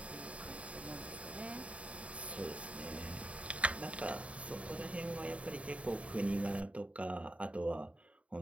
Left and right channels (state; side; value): late; left; 0.064 ms